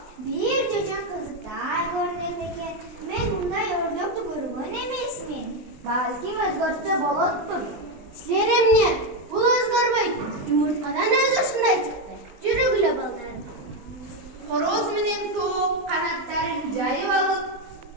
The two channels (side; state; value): left; late; 20 ms